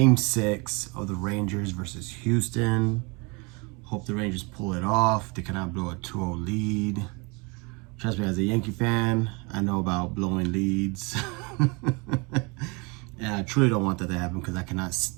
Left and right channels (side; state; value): left; quieter; 29.6 dB